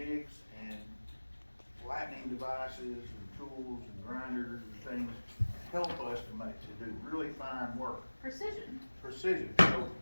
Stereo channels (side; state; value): both; inverted; correlation -1.00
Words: and flattening devices and tools and grinders and things help us to do really fine work. Precision. Precision. So